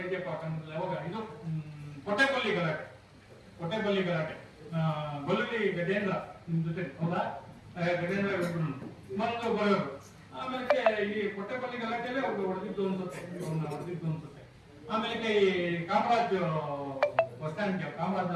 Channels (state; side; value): identical; both; correlation 1.00